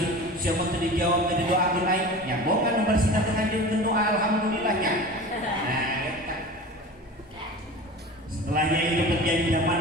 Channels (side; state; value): both; normal; correlation 0.35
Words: siapa tadi dijawab tadi doa lain yang bohongan bersih nanti ngajian doa alhamdulillahnya. Nah, setelahnya itu terjadi zaman